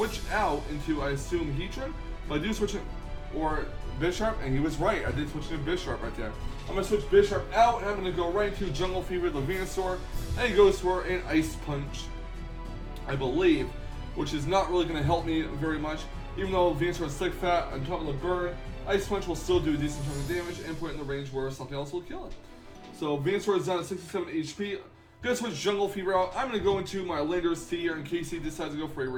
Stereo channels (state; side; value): identical; both; correlation 1.00